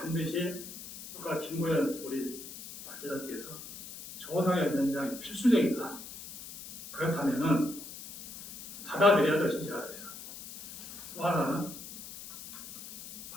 아까 김고현 우리 발제자께서 조사의 연장이 필수적이다. 그렇다면은 받아들여야죠. 진실하에서. 또 하나는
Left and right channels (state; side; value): noise; left; hiss, 13 dB below the sound